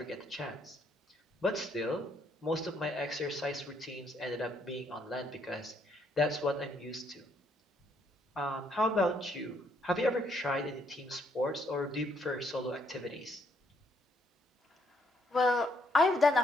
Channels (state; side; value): normal; both; correlation 0.71